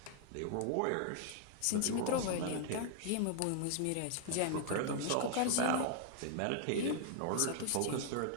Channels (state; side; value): different; both; correlation 0.00